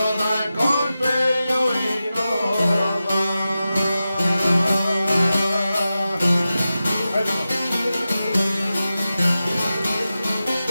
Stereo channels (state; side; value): inverted; both; correlation -0.93